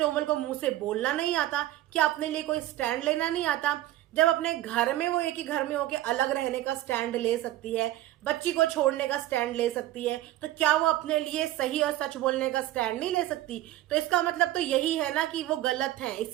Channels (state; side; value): quieter; left; 14.7 dB